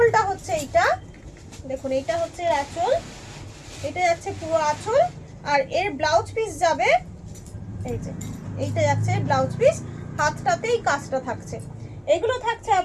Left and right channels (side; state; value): both; identical; correlation 1.00